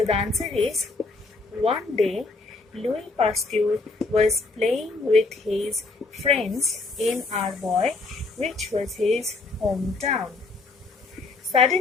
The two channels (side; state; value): right; quieter; 3.6 dB